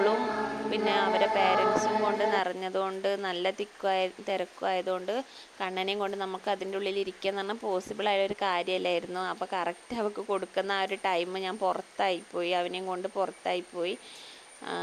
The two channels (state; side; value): identical; both; correlation 1.00